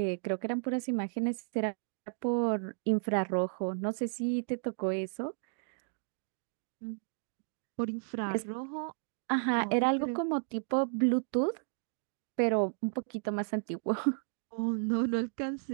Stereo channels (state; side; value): silent; left; digital silence